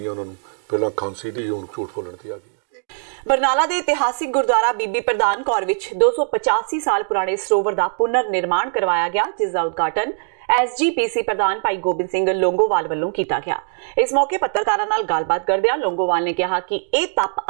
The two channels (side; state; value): left; silent; digital silence